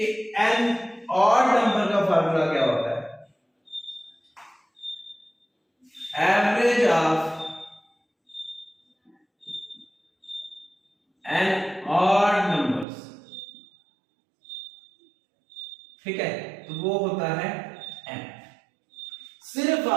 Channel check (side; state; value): left; drops out; at 12.9 s